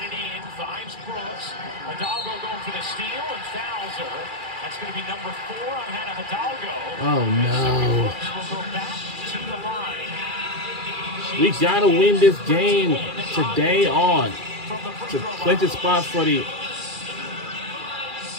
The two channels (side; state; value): left; late; 2.4 ms